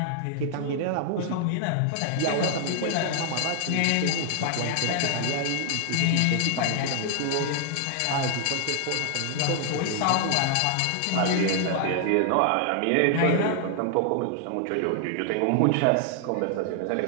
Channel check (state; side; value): different; both; correlation 0.00